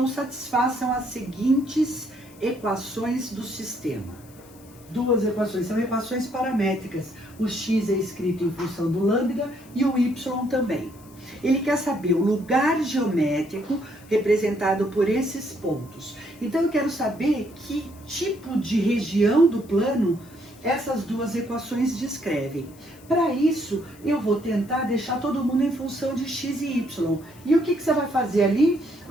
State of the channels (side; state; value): left; noise; hiss, 25 dB below the sound